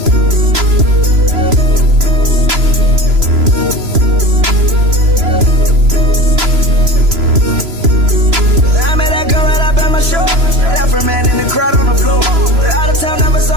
I met that girl right up at my show. Left her man in the crowd on the floor. Out of town, never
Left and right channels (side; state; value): left; late; 3.0 ms